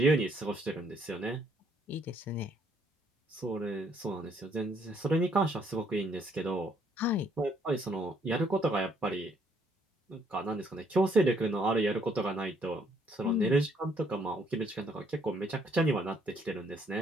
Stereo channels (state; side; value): normal; both; correlation 0.67